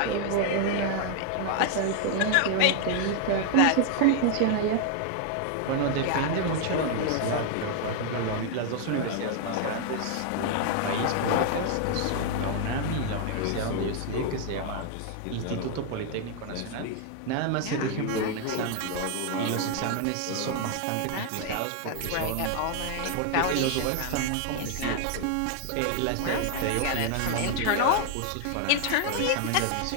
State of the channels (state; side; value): different; both; correlation 0.00